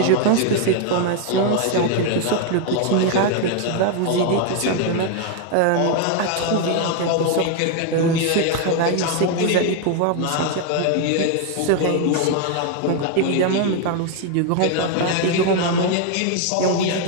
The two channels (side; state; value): both; different; correlation 0.01